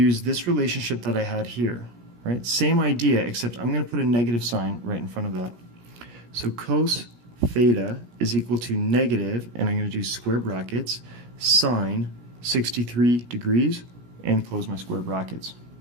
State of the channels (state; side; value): late; left; 17 ms